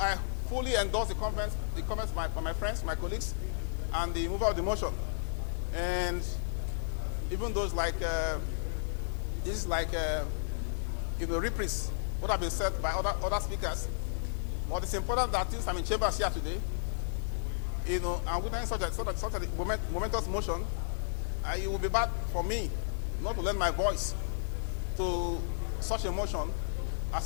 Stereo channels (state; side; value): silent; right; 56 dB below the other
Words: fully endorse the comments by my friends, my colleagues, and the mover of the motion. And even those like, this is like, reprise what have been said by other speakers. But it's important that since I'm in chambers here today, I'm witnessing such a momentous motion, it would be bad for me not to lend my voice to such a motion